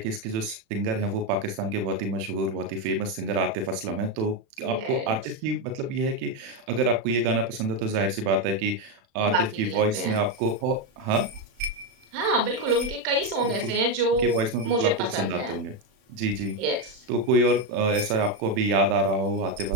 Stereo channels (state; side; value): late; left; 36 ms